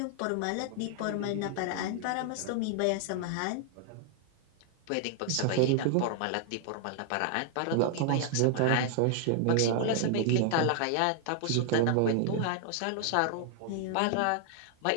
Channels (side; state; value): both; different; correlation 0.00